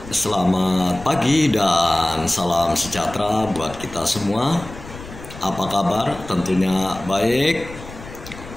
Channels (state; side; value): noise; left; rumble, 15 dB below the sound